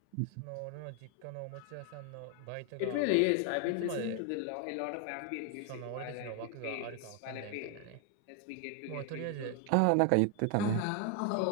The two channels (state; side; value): different; both; correlation 0.01